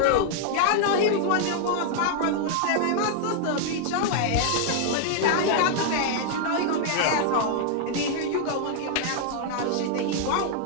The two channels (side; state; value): both; different; correlation 0.00